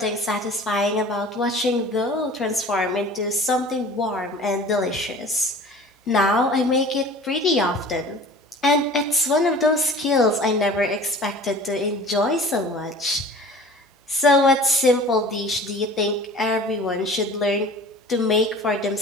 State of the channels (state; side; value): normal; both; correlation 0.43